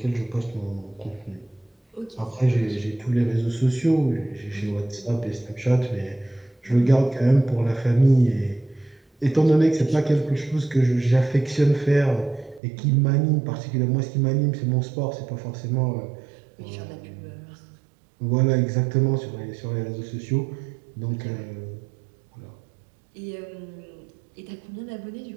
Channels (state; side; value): drops out; left; at 12.6 s